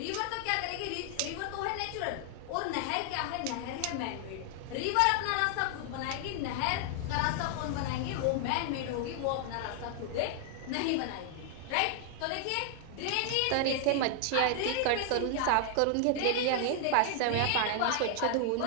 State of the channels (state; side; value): different; both; correlation 0.00